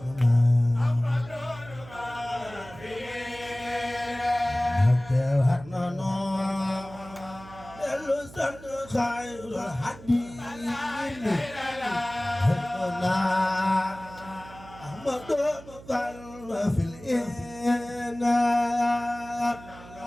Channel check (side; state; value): right; noise; hum, 18 dB below the sound